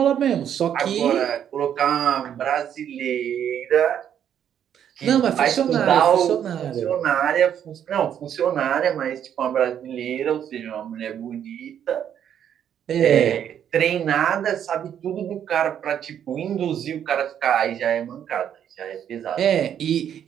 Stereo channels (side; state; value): left; quieter; 9.4 dB